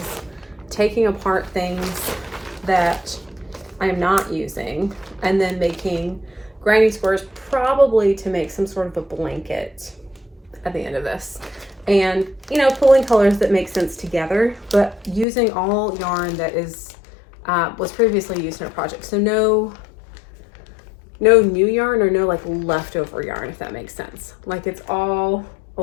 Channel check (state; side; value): drops out; right; at 15.2 s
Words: taking apart things that I'm not using and then making granny squares, probably to make some sort of a blanket at the end of this. And, you know, pulling colors that make sense together, but using all yarn that is was previously used in a project. So no new yarn, or no like leftover yarn, if that makes sense. Like it's all a